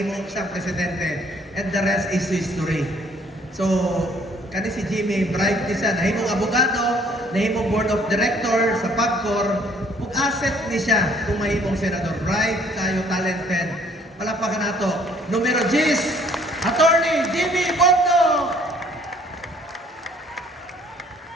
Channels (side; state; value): both; normal; correlation 0.60